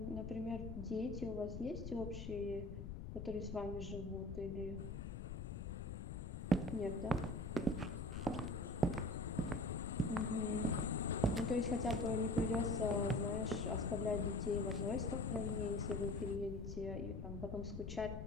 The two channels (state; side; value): noise; left; rumble, 6 dB below the sound